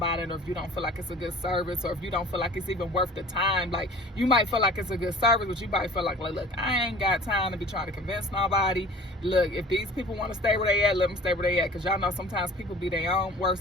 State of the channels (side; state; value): both; normal; correlation 0.45